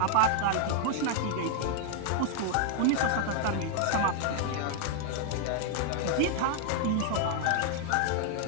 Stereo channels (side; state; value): both; different; correlation 0.00